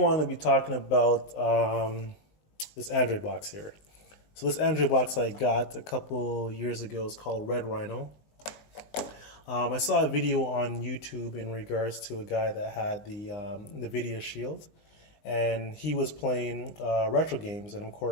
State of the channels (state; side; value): late; right; 19 ms